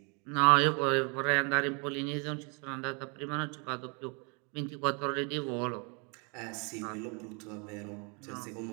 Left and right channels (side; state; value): left; quieter; 34.2 dB